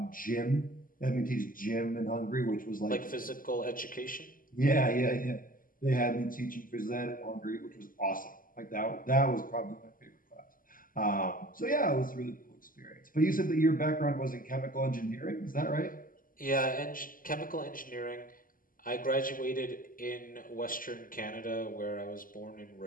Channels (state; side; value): late; right; 0.41 ms